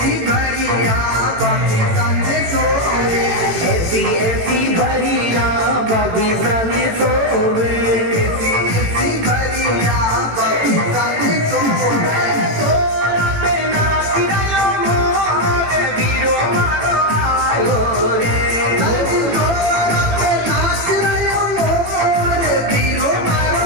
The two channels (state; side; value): late; left; 18 ms